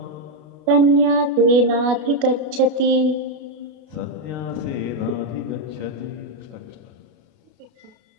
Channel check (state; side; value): late; left; 33 ms